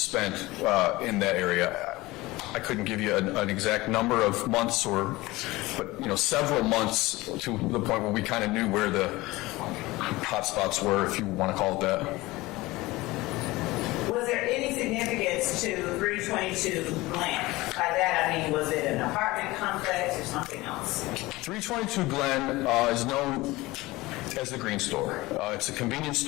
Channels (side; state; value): right; quieter; 20.2 dB